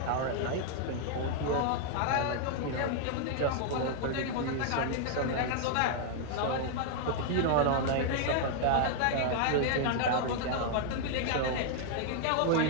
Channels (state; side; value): different; both; correlation 0.00